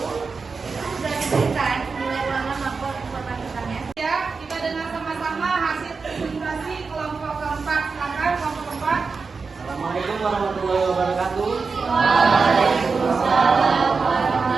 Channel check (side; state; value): left; quieter; 4.7 dB